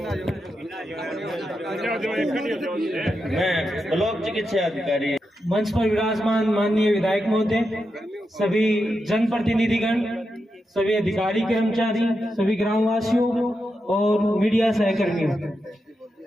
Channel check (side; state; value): both; normal; correlation 0.87